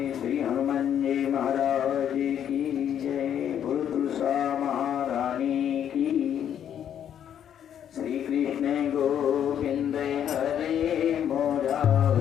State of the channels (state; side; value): quieter; right; 9.5 dB